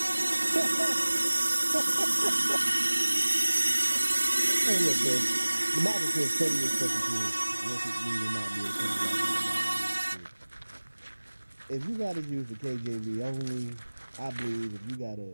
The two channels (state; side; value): inverted; both; correlation -1.00